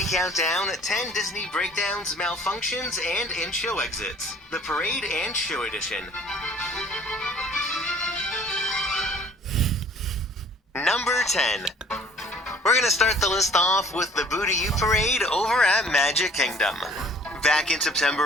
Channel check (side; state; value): both; normal; correlation 0.54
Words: count down 10 Disney breakdowns, malfunctions, and in-show exits. The Parade and Show Edition. Number 10. We're gonna start the list off with the Boo-To-You Parade over at Magic Kingdom. Back in